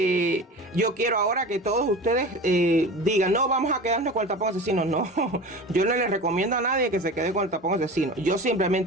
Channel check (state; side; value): normal; both; correlation 0.33